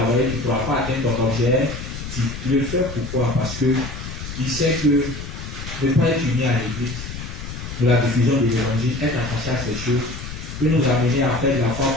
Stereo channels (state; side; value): noise; left; rumble, 9 dB below the sound